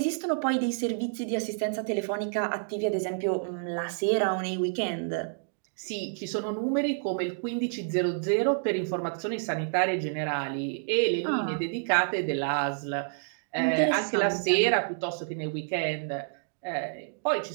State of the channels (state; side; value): silent; left; digital silence